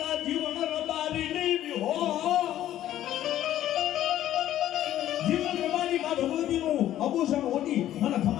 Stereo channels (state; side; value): quieter; right; 12.6 dB